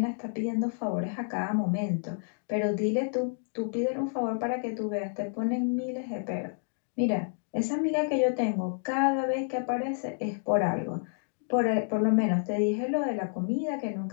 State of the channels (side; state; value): right; silent; digital silence